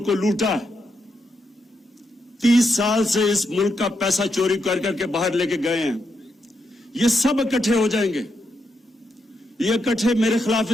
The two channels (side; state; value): both; normal; correlation 0.82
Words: کو لوٹا, 30 سال سے اس ملک کا پیسہ چوری کر کر کے باہر لے کے گئے ہیں, یہ سب اکٹھے ہو جائیں گے. یہ اکٹھے میرے خلاف